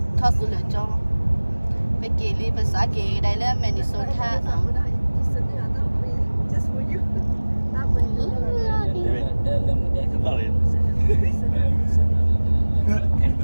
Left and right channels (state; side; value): inverted; both; correlation -1.00